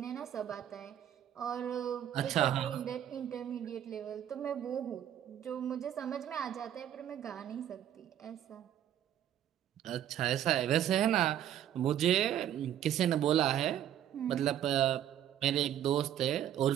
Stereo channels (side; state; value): left; quieter; 10.8 dB